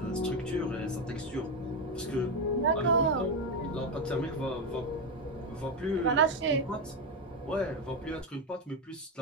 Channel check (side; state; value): both; normal; correlation 0.10